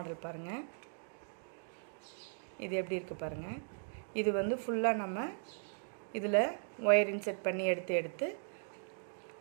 பாருங்கள். இது எப்படி இருக்குது பாருங்கள். இது வந்து ஃபுல்லாக நம்ம இதில் ஒயர் இன்செர்ட் பண்ணி எடுத்து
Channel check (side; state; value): left; silent; digital silence